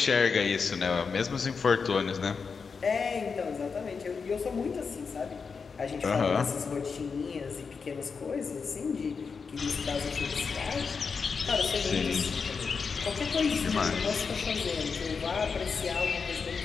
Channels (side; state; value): right; quieter; 5.4 dB